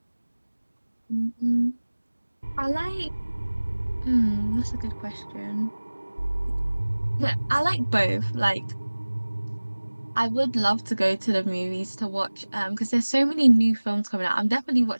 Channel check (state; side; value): inverted; both; correlation -1.00